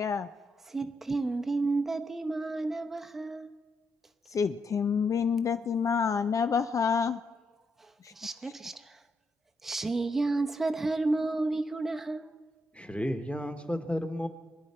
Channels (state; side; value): normal; both; correlation 0.80